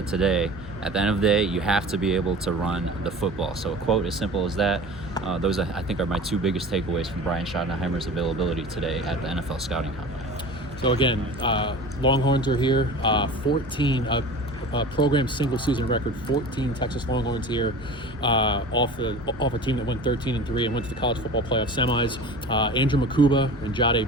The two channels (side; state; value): both; normal; correlation 0.37